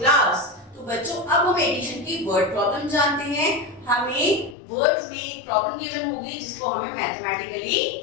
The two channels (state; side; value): drops out; right; at 4.5 s